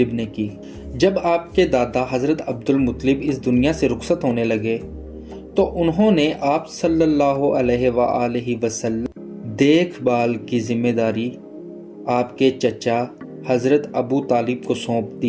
نے کی۔ جب آپ کے دادا حضرت عبد المطلب اس دنیا سے رخصت ہونے لگے تو انہوں نے آپ صلی اللہ علیہ وآلہ وسلم دیکھ بھال کی ذمہ داری آپ کے چچا حضرت ابو طالب کو سونپ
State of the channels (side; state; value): both; identical; correlation 1.00